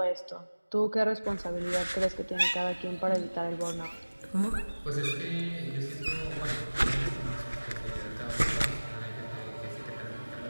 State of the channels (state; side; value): inverted; both; correlation -1.00